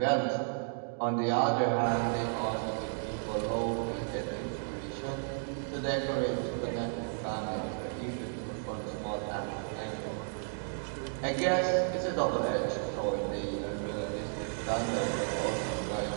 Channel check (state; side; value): silent; left; digital silence